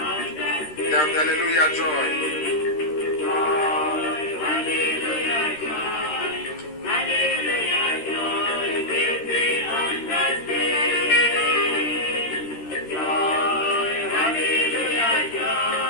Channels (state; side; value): late; right; 13 ms